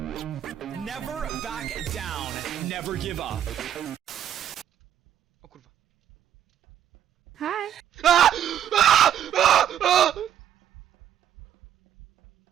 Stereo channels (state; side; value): quieter; left; 10.3 dB